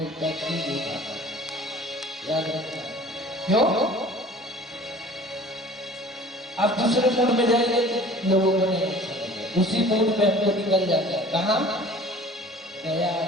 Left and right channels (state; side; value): normal; both; correlation 0.46